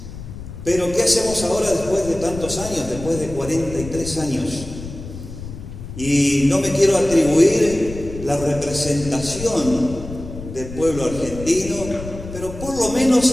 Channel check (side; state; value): left; noise; rumble, 11 dB below the sound